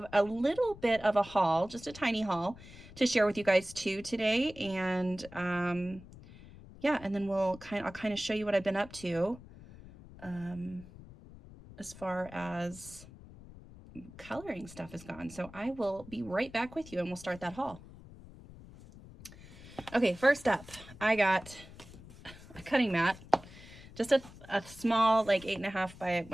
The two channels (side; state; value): left; noise; rumble, 18 dB below the sound